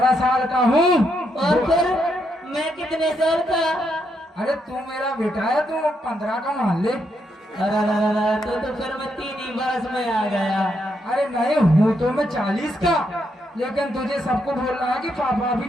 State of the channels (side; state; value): both; normal; correlation 0.79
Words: साल का हूँ। और फिर मैं कितने साल का? अरे तू मेरा बेटा है, तू 15 का मान ले। अरे तो फिर मैं 3 ही बरस में आ गया। अरे नहीं हूँ तो मैं 40 का, लेकिन तुझे सबको बोल रहा है कि पापा